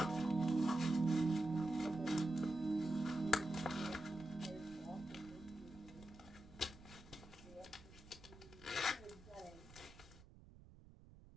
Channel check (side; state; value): right; noise; rumble, 20 dB below the sound